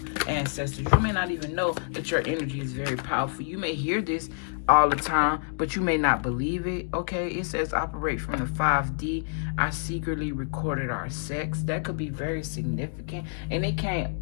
ancestors. You may not even know that your energy is very powerful. You may hear this all the time, but you may not believe it. Okay, it says operate from the 5D. I secretly recorded our sex. That could be very significant. And it came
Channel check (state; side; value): silent; right; digital silence